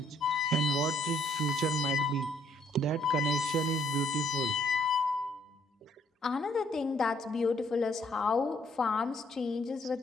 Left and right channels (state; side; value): normal; both; correlation 0.67